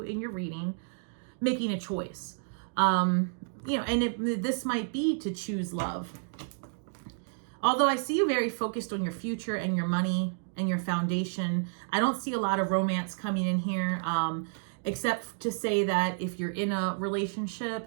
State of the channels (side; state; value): left; silent; digital silence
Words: in your reading, making a choice. You know, and this might be to choose love. Although I see you very focused on your future and your money and your foundation. I don't see a lot of romance coming in here, except to say that if you're in a